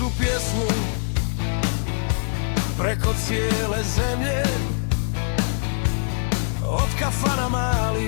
pjesmu preko cijele zemlje, od kafana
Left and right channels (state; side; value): silent; right; 63 dB below the other